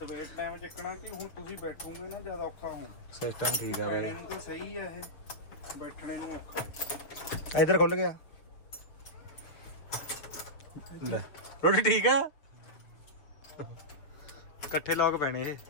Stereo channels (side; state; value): right; late; 6.4 ms